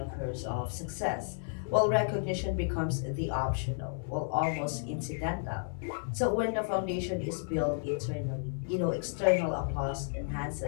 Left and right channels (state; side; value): silent; right; 56 dB below the other